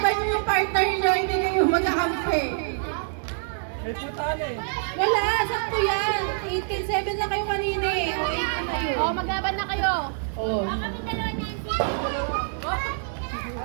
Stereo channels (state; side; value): silent; left; 61 dB below the other